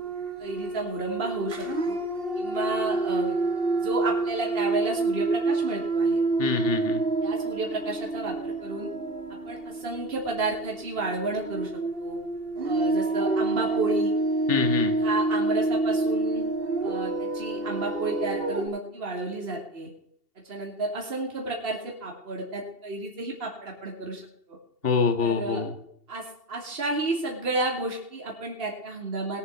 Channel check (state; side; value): late; left; 2.7 ms